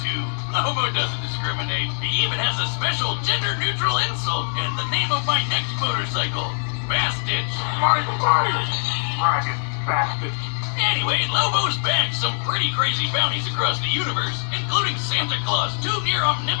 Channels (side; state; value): right; silent; digital silence